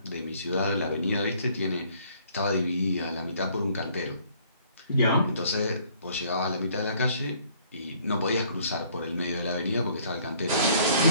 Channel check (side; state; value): both; inverted; correlation -0.60